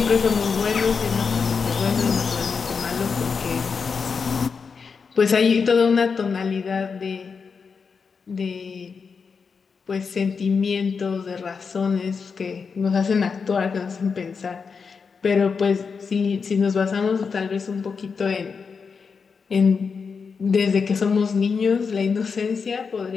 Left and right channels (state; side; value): quieter; right; 5.5 dB